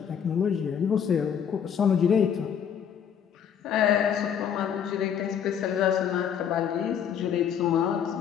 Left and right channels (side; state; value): right; quieter; 8.2 dB